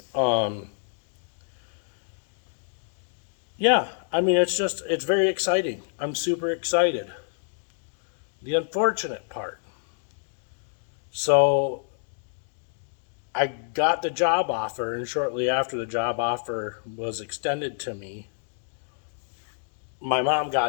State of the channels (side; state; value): right; silent; digital silence